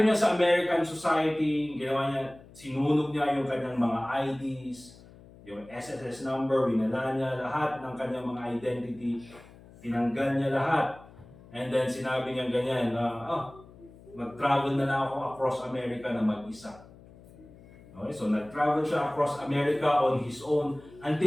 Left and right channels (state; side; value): noise; left; hum, 22 dB below the sound